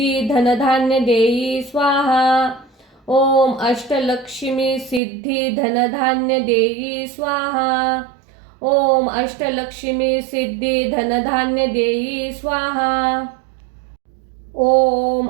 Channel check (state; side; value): drops out; left; at 5.0 s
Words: धनधान्य देई स्वाहा। ओम अष्टलक्ष्मी सिद्धी धनधान्य देई स्वाहा। ओम अष्टलक्ष्मी सिद्धी धनधान्य देई स्वाहा। ओम